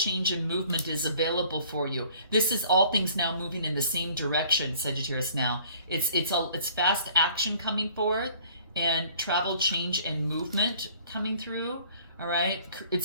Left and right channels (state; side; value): inverted; both; correlation -0.55